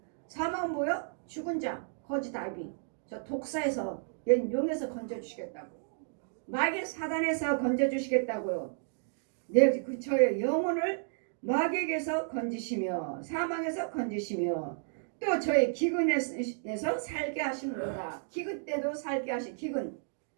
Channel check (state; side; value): silent; left; digital silence